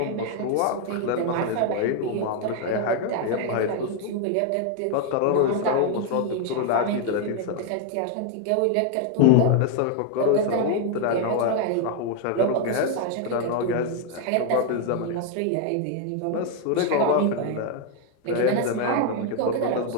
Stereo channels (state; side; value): different; both; correlation 0.01